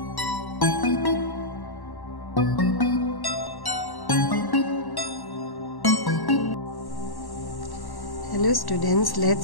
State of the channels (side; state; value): right; late; 1.1 ms